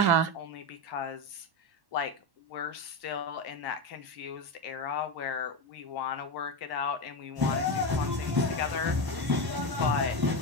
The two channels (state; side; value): late; left; 1.1 ms